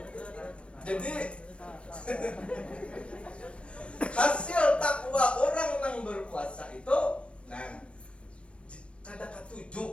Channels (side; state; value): right; late; 0.059 ms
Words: jadi hasil takwa orang yang berpuasa itu nah kada